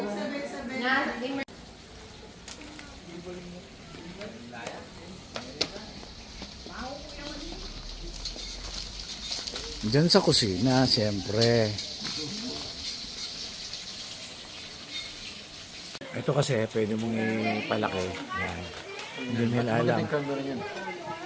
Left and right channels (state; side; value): identical; both; correlation 1.00